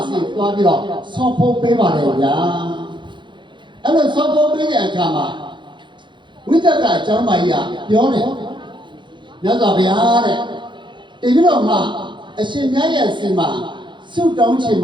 စီသွားပြီးတော့ဆော့ဖို့ပေးပါတယ်ဗျာအဲ့လိုဆော့ဖို့ပေးတဲ့အခါမှာဝိတ္တကအကြောင်းမကြီးကပြောတယ်မြတ်စွာဘုရားတဲ့တပြီးတော့မှအရှင်မြတ်ရဲ့စီမှာဆုတောင်းချင်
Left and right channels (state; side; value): late; left; 0.23 ms